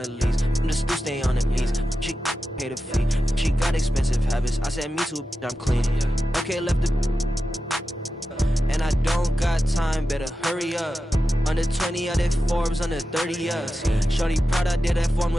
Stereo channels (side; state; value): both; normal; correlation 0.91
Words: leaves. I'm the still stay on the knees. She pay the fee. She got expensive habits. I said, me too, I'm clean. Okay, left the. And I don't got time, better hurry up. Under 20, I did Forbes, under 30 us. Shorty proud I did that form